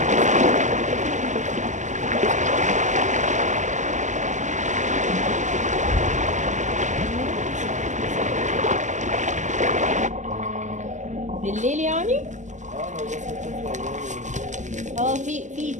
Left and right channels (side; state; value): left; late; 0.35 ms